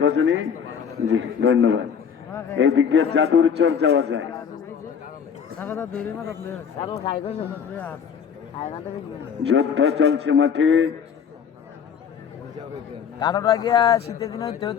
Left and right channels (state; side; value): quieter; right; 7.2 dB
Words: গজনী? জি ধন্যবাদ। এই দিক দিয়ে জাদুর চর যাওয়া যায়। যুদ্ধ চলছে মাঠে। কাটোটা গিয়া শীতের দিনে